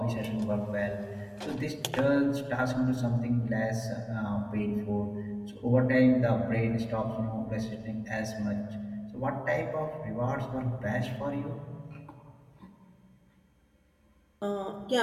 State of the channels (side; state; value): both; identical; correlation 1.00